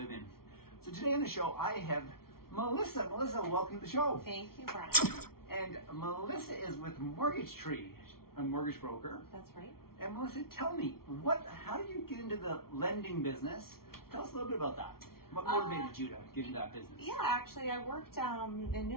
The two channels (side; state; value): right; late; 0.94 ms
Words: in. So today on the show, I have Melissa. Melissa, welcome to the show. Thank you, Bryon. And Melissa is with Mortgagetree, a mortgage broker. That's right. And Melissa, tell me, how did you get into the lending business? Tell us a little bit about that. What motivated you to get into that business? Yeah, actually, I worked in new